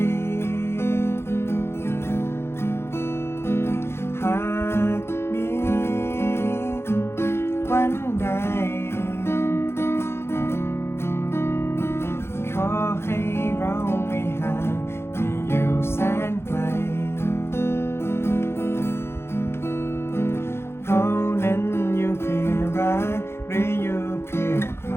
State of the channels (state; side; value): late; right; 0.12 ms